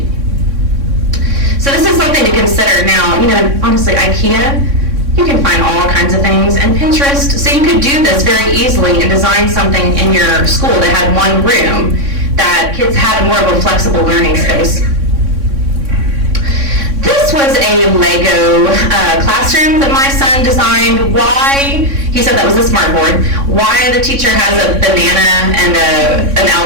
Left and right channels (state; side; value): late; left; 3.6 ms